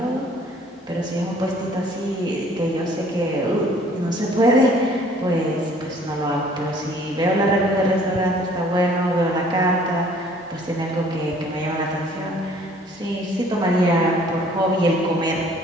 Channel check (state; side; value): normal; both; correlation 0.56